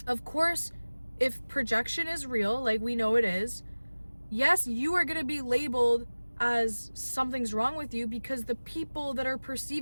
Of course, if projection is real, like we know it is, yes, you are going to be labeled as something's wrong with you, because the people that are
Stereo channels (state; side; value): inverted; both; correlation -1.00